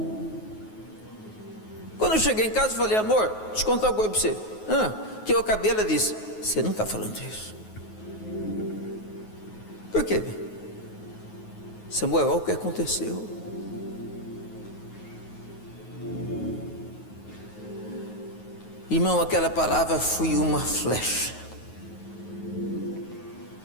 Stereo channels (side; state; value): right; late; 9.4 ms